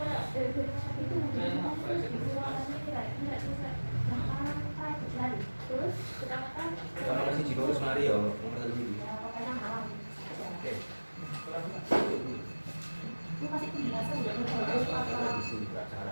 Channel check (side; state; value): both; inverted; correlation -1.00